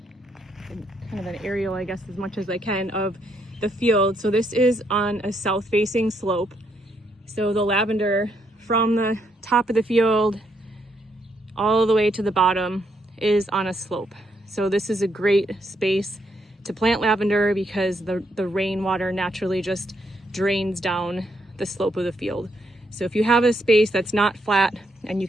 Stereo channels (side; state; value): both; normal; correlation 0.76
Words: kind of an aerial, I guess, as much as I can of the field. So this is on a south facing slope. So the lavender from the top of the field all the way to the bottom is on a slope. So this is a great space to plant lavender because the rainwater naturally just drains down the slope of the field. So if you have a space that's not flat and you